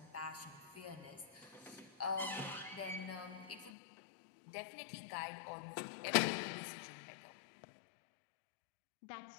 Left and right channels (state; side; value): drops out; right; at 3.7 s